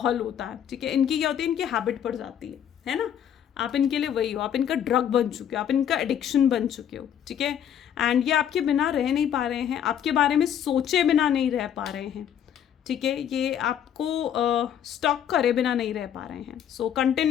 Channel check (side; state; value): right; quieter; 9.4 dB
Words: होता है, ठीक है। इनकी क्या होती है, इनकी हैबिट पड़ जाती है ना। आप इनके लिए वही हो, आप इनका ड्रग बन चुके हो, आप इनका एडिक्शन बन चुके हो, ठीक है। एंड ये आपके बिना रह नहीं पा रहे हैं, आपके बारे में सोचे बिना नहीं रह पा रहे हैं, ठीक है। ये आपको स्टॉक करे बिना नहीं रह पा रहे हैं। सो